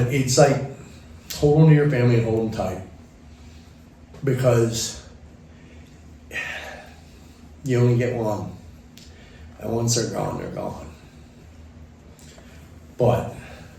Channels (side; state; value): both; identical; correlation 1.00